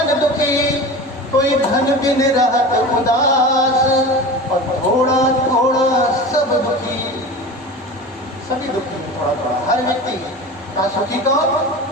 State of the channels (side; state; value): both; normal; correlation 0.32